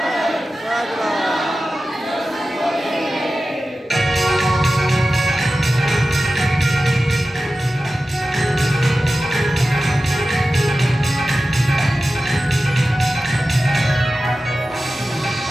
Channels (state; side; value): normal; both; correlation 0.94